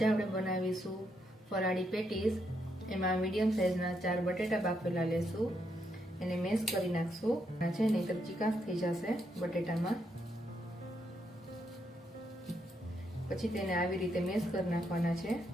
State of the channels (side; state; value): both; normal; correlation 0.78